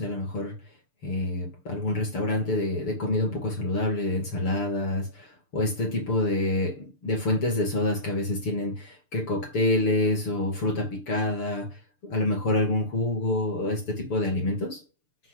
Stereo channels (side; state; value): right; late; 6.8 ms